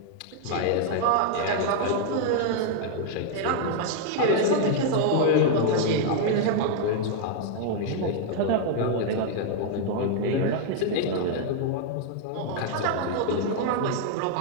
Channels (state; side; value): different; both; correlation 0.00